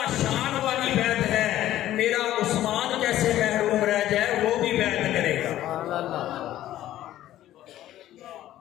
شان والی بیعت ہے، میرا عثمان کیسے محروم رہ جائے، وہ بھی بیعت کرے گا.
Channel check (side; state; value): right; quieter; 13.4 dB